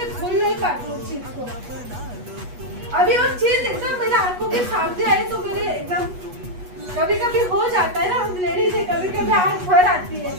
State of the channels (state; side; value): late; left; 8.2 ms